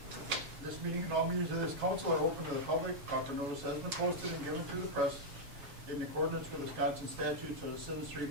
This meeting and all meetings of this council are open to the public. Proper notice has been posted and given to the press in accordance with Wisconsin Statutes, so the citizenry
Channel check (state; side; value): late; left; 7.2 ms